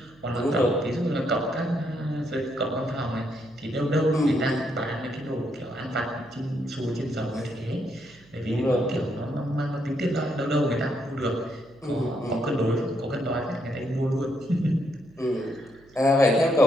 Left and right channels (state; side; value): noise; right; hum, 28 dB below the sound